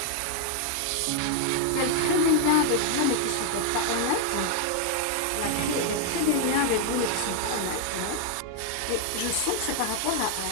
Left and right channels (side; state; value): both; different; correlation 0.00